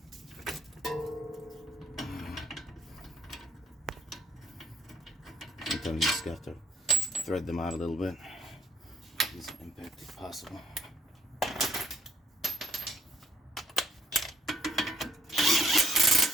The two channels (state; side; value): normal; both; correlation 0.66